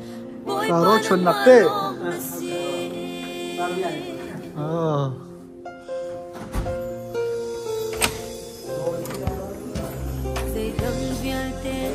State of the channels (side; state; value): both; identical; correlation 1.00